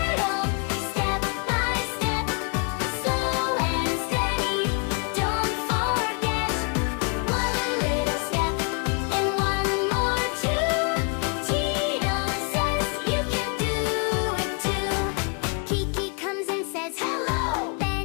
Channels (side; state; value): right; quieter; 34.5 dB